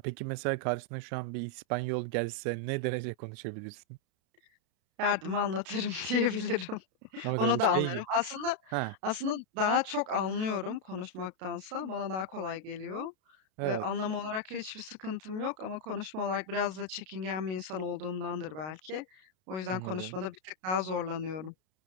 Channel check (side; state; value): left; late; 32 ms